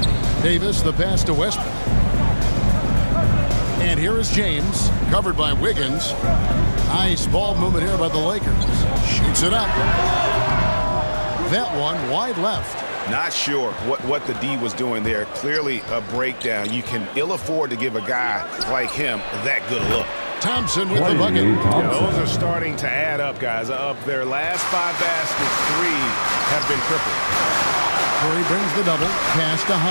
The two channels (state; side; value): inverted; both; correlation -1.00